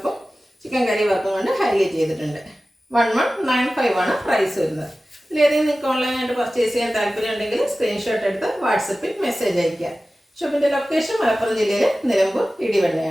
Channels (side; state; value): both; normal; correlation 0.96